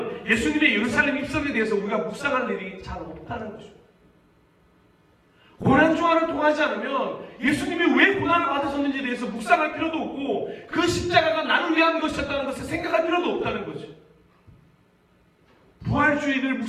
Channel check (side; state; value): both; identical; correlation 1.00